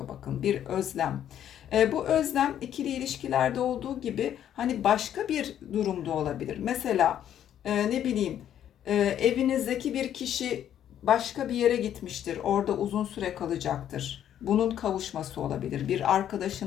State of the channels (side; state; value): right; quieter; 10.4 dB